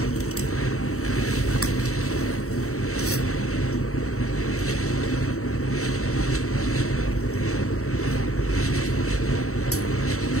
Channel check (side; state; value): right; late; 0.64 ms